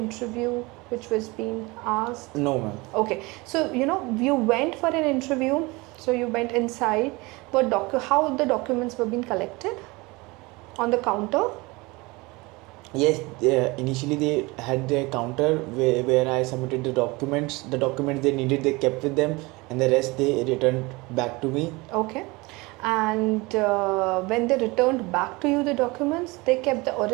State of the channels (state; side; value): quieter; left; 24.0 dB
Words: which was being asked? No, ma'am. Okay, so you went for an interview, so you went inside, but how the documents were being collected on the counter? Yes, initially they had their counter where I submitted the documents. The documents they needed, they kept with them, and the rest they returned back to me. Okay. And when they returned back to you the documents, they kept the